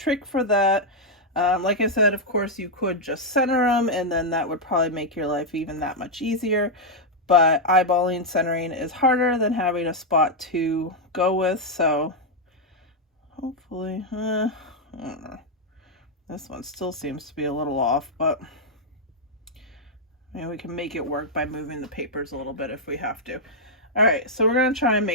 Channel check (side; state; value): both; normal; correlation -0.03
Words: for that. Like I said, of course you could just center them, and then that would probably make your life even that much easier, but eyeballing centering is harder than having a spot to go with. So hopefully, I don't know. This one still seems to be a little off, but maybe we can make it work by moving the papers a little bit if we have to. All right, so we're going to try and